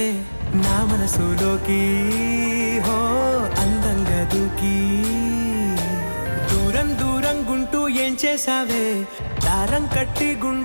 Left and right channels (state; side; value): inverted; both; correlation -1.00